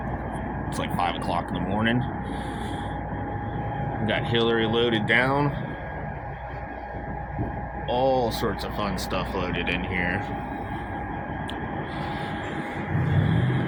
It's like 5 o'clock in the morning. We got Hillary loaded down. All sorts of fun stuff loaded in here.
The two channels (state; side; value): identical; both; correlation 1.00